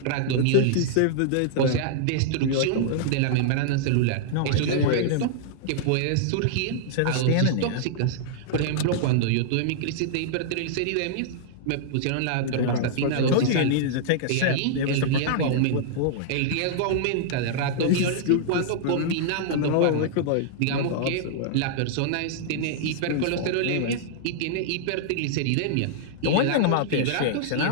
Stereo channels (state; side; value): different; both; correlation -0.01